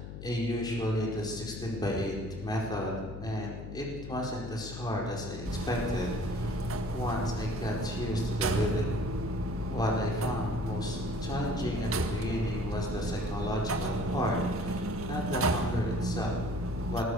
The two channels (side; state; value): left; noise; hum, 9 dB below the sound